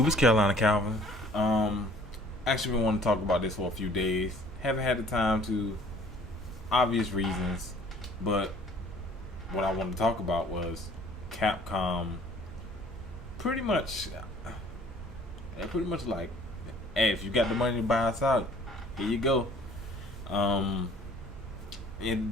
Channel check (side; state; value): both; normal; correlation 0.54